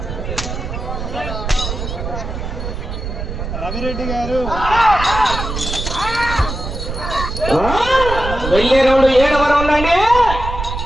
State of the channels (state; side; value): noise; right; rumble, 6 dB below the sound